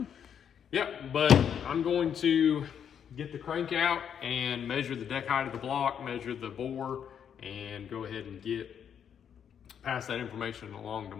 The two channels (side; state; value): right; quieter; 8.3 dB